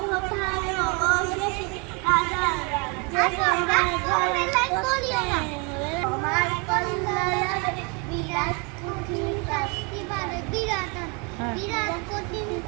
কোথায় অবশেষে, রাজার রাজ্যে সবাই ঘরে করতে হবে তোমার কল্যাণ হবে, বিরাট কঠিন শাস্তি পাবে, বিরাট কঠিন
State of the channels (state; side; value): quieter; left; 32.2 dB